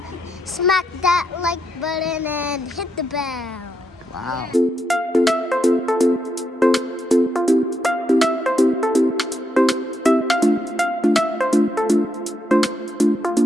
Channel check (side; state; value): both; normal; correlation 0.80